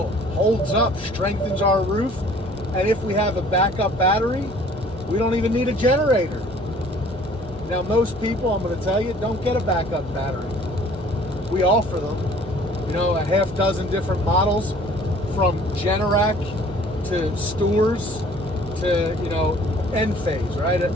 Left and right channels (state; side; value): normal; both; correlation 0.53